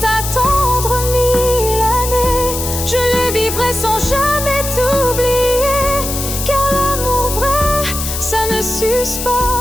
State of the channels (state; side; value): noise; left; hiss, 5 dB below the sound